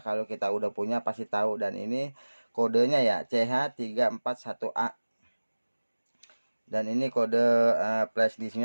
kita udah punya pasti tahu. Dan ini kodenya ya CH341A. Dan ini kode flash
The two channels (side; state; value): both; inverted; correlation -1.00